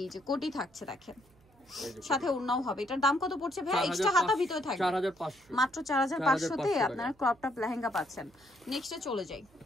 যে কোটি থাকছে, দেখেন, সাথে উন্নাও হবে। এটার দাম কত পড়ছে ভাই? এক্সট্রা হাতা ভিতরে থাকবে 4500, মাত্র 4500 তে আপনারা ক্রপ টপ লেহেঙ্গা পাচ্ছেন। নেক্সটে চলে যাই।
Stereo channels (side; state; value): right; noise; hum, 30 dB below the sound